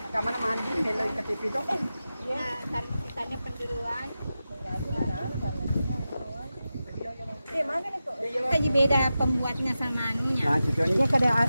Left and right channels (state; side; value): inverted; both; correlation -0.92